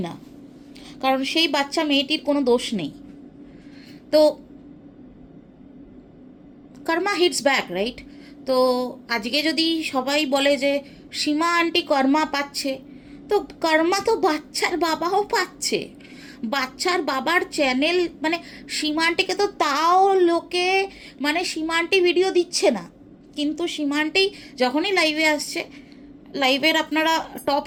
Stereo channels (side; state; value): both; identical; correlation 1.00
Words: না, কারণ সেই বাচ্চা মেয়েটির কোনো দোষ নেই। তো কর্মা হিটস ব্যাক, রাইট? তো আজকে যদি সবাই বলে যে সীমা আন্টি কর্মা পাচ্ছে, তো কর্মা তো বাচ্চার বাবাও পাচ্ছে। বাচ্চার বাবার চ্যানেল, মানে সীমা আন্টিকে তো তাও লোকে মানে সীমা আন্টি ভিডিও দিচ্ছে না, কিন্তু সীমা আন্টি যখনই লাইভে আসছে, লাইভের আপনারা টপ